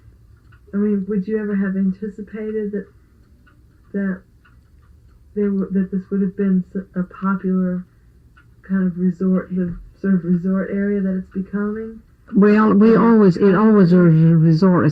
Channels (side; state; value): both; identical; correlation 1.00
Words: would you ever have anticipated that that this would have been a popular kind of resort, the sort of resort area that it's becoming? Well, it always was a resort